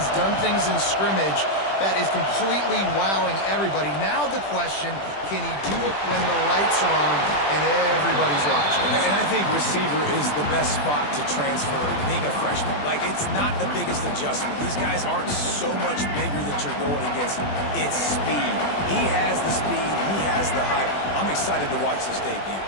done things in scrimmage that is completely wowing everybody. Now the question, can he do it when the lights are on and everybody's watching? And I think receiver is the best spot to transfer being a freshman. Like, it's not the biggest adjustment. These guys aren't so much bigger that you're going against. It's speed. He has the speed. He has the height. I'm excited to watch this debut.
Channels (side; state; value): right; late; 20 ms